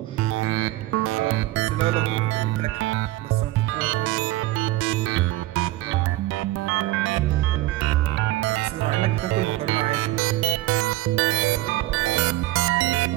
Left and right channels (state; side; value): quieter; left; 16.9 dB